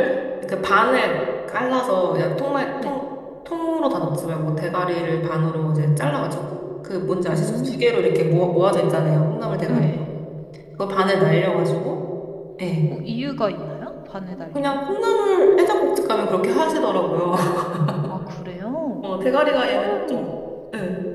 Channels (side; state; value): both; identical; correlation 1.00